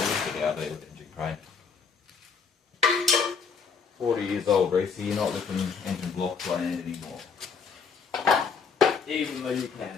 it out there with the engine crane. 40 years old, Reese, you're not lifting engine blocks by hand anymore. Even though you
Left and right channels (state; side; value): quieter; right; 5.7 dB